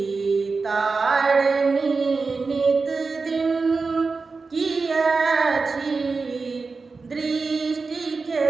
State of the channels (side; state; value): left; quieter; 4.3 dB